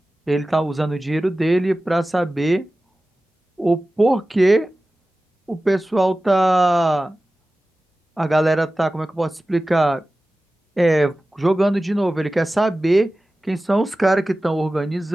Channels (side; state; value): both; normal; correlation 0.96